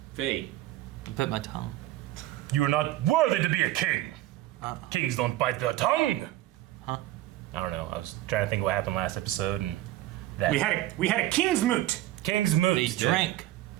Fate. You bit my tongue. You are not worthy to be a king. Kings don't bite their tongue. Huh? I don't know. I was trying to think what happened last episode, and that We had a king's moot. King's moot. They drank.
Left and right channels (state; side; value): quieter; left; 15.5 dB